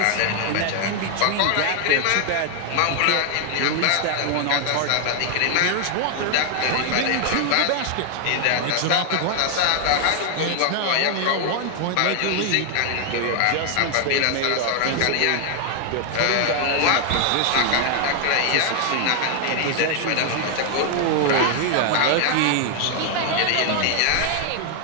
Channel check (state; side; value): different; both; correlation 0.00